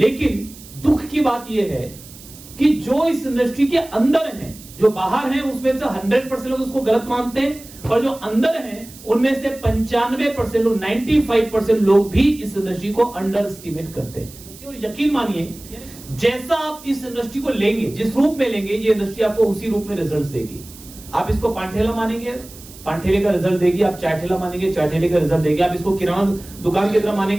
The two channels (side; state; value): right; noise; hiss, 19 dB below the sound